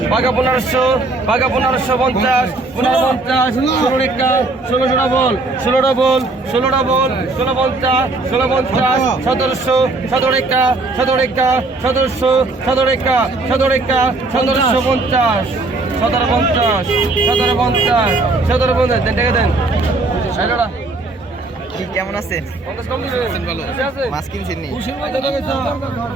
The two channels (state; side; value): quieter; left; 3.2 dB